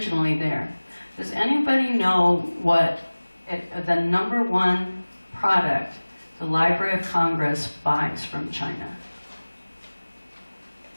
there. Does anybody know what the #1 product the Library of Congress buys from China?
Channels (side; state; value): both; inverted; correlation -1.00